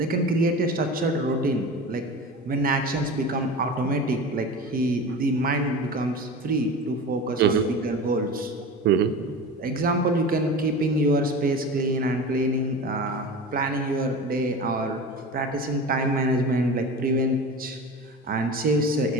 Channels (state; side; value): normal; both; correlation 0.32